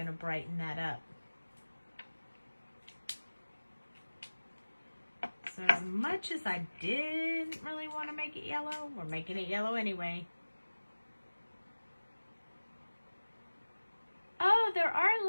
to brighten that up. So as much as I didn't really want to make it yellow, we're making it yellow anyway. Oh, there are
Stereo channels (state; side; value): inverted; both; correlation -1.00